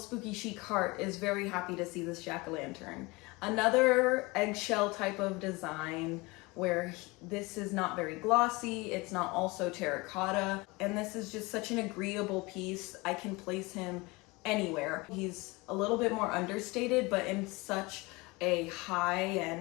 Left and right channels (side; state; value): right; quieter; 24.2 dB